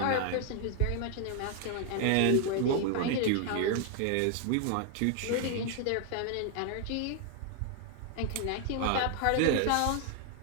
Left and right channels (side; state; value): both; different; correlation 0.00